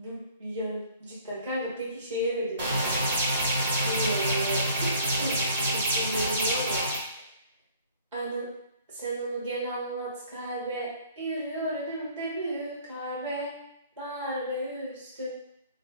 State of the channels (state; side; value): inverted; both; correlation -0.54